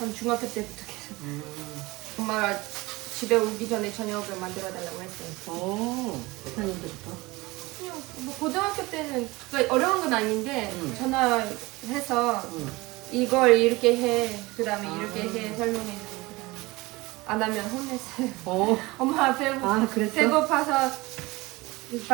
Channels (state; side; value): quieter; left; 22.0 dB